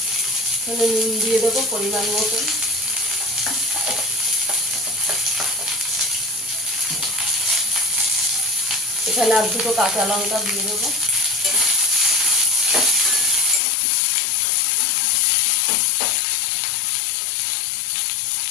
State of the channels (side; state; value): right; drops out; at 13.6 s